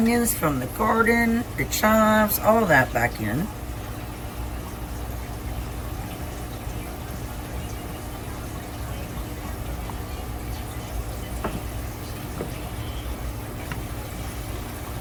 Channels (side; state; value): both; identical; correlation 1.00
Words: from the garden, the chives, all that back in.